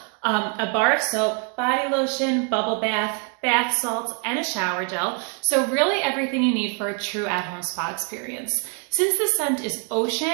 a bar of soap, body lotion, bubble bath, bath salts, and a shower gel. So really everything you need for a true at-home spa experience. Since the scent is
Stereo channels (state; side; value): quieter; left; 36.8 dB